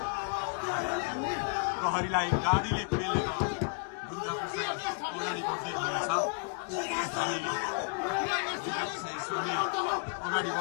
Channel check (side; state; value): right; quieter; 38.9 dB